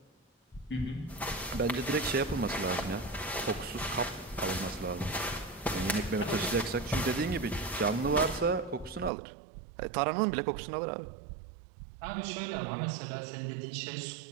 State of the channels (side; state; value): left; drops out; at 9.1 s